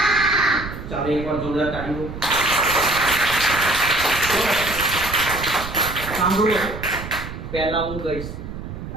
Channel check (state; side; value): noise; right; rumble, 9 dB below the sound